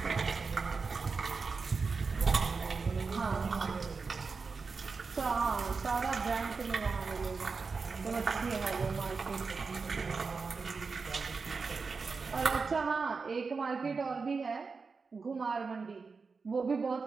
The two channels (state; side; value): quieter; left; 4.7 dB